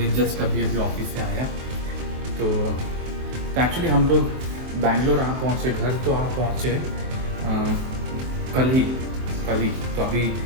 जस्ट अभी ऑफिस से आया। तो एक्चुअली हम लोग बैंगलोर आ पहुँचे, घर तो आ पहुँचे कल ही। तो अभी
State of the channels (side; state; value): left; late; 23 ms